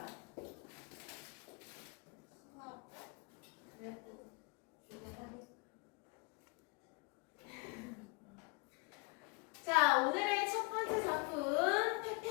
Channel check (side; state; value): right; quieter; 31.5 dB